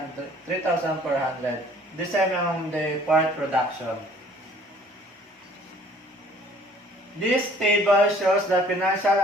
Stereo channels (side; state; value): both; normal; correlation 0.55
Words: The same on the fourth production. This table shows the financial